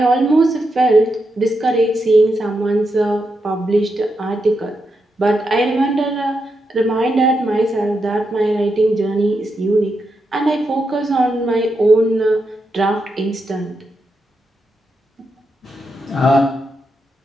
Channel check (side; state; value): both; normal; correlation 0.85